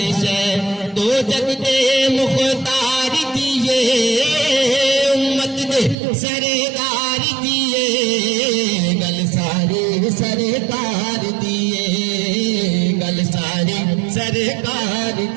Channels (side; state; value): left; drops out; at 6.0 s